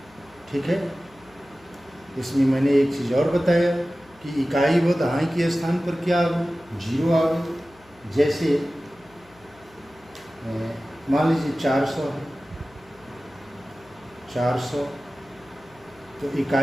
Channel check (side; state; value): left; noise; hum, 28 dB below the sound